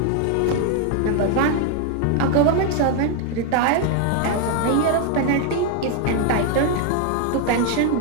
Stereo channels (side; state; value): both; different; correlation 0.00